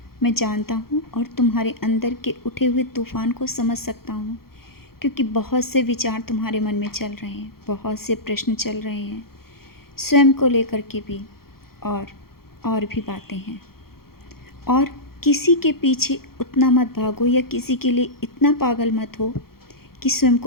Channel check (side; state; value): right; late; 0.94 ms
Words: मैं जानता हूँ और तुम्हारे अंदर के उठे हुए तूफ़ान को समझ सकता हूँ, क्योंकि बहुत से विचार तुम्हारे मन में चल रहे हैं, बहुत से प्रश्न चल रहे हैं, स्वयं को लेकर के भी और भी बातें हैं। और किसी के पीछे उतना मत भागो या किसी के लिए इतना पागल मत हो कि स्वयं